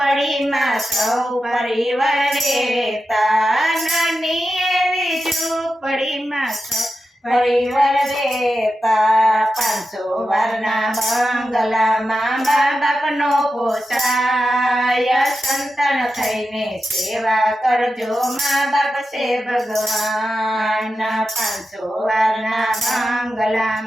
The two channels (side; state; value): both; normal; correlation 0.90